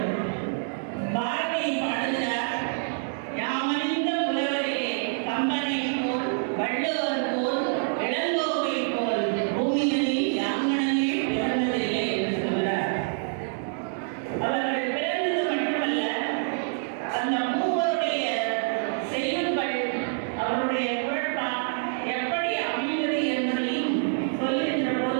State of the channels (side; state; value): left; silent; digital silence